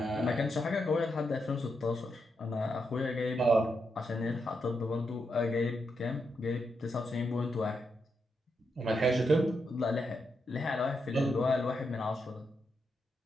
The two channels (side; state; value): both; normal; correlation 0.83